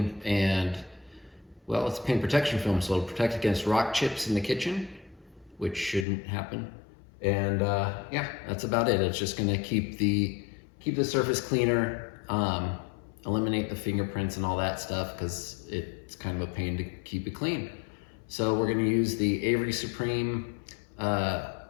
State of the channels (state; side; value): drops out; right; at 6.1 s